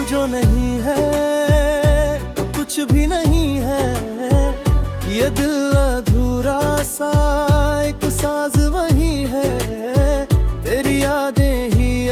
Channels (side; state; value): both; identical; correlation 1.00